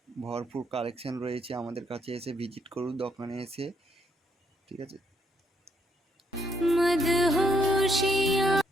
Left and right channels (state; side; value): normal; both; correlation 0.71